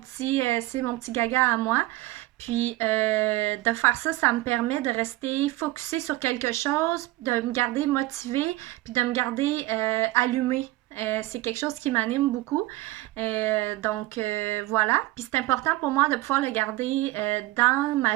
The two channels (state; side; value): quieter; left; 18.4 dB